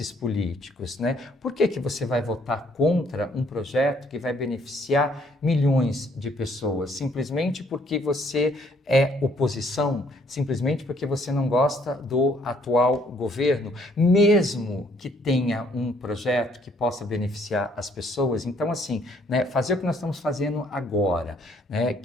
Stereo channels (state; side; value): normal; both; correlation 0.65